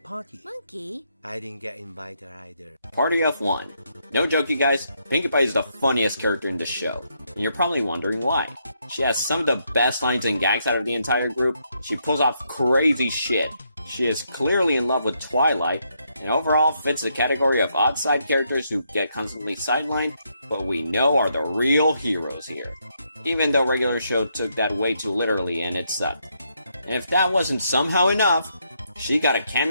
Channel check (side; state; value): both; inverted; correlation -0.76